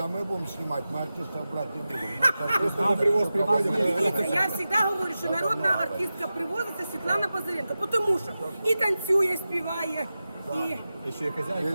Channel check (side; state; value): both; inverted; correlation -0.94